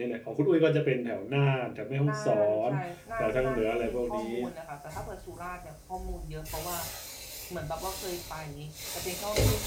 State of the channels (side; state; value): both; identical; correlation 1.00